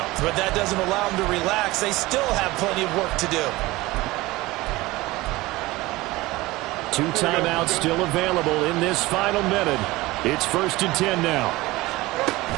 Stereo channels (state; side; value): quieter; left; 19.8 dB